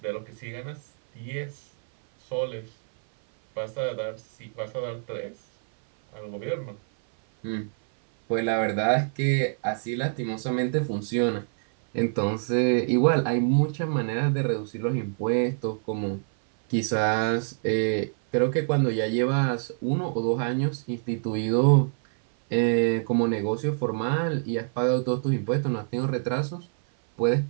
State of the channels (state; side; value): silent; left; 56 dB below the other